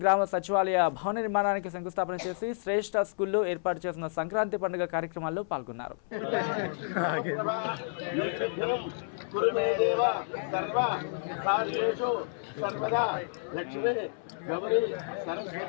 గ్రామ సచివాలయ భవన నిర్మాణానికి శంకుస్థాపన చేసి శ్రేష్ఠ స్కూల్లో ఏర్పాటు చేసిన సంక్రాంతి పండుగ కార్యక్రమాల్లో పాల్గొన్నారు. గౌరీ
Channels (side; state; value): right; silent; 58 dB below the other